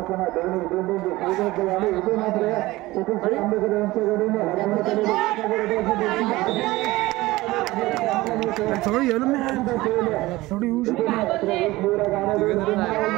सगळं येलो मी थोडी येऊ शकतो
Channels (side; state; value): left; quieter; 19.1 dB